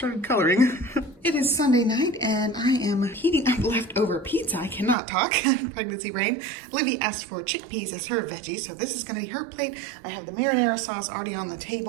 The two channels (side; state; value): left; drops out; at 5.0 s